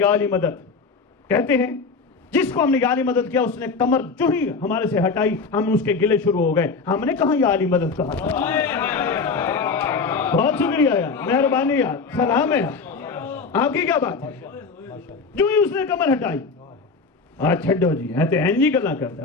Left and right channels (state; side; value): quieter; right; 4.6 dB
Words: علی مدد. کہتے ہیں جس کو ہم نے یا علی مدد کیا اس نے کمر جو ہی ہمارے سے ہٹائی ہم اس کے گلے شروع ہو گئے. ہم نے کہاں یا علی مدد کہا؟ بہت شکریہ یار، مہربانی یار، سلام ہے یار. آپ کی کیا بات ہے؟ جو ہی اس نے کمر ہٹائی، چھڈو جی ہے تو این جی گلا